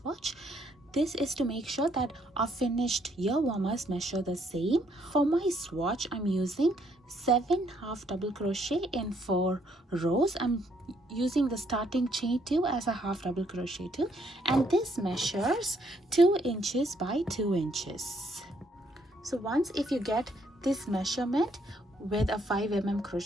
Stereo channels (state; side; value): normal; both; correlation 0.70